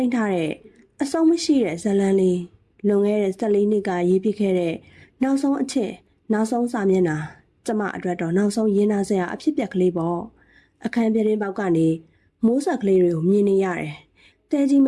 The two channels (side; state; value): both; identical; correlation 1.00